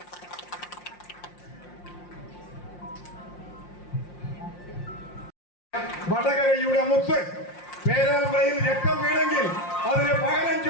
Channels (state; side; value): late; right; 5.6 ms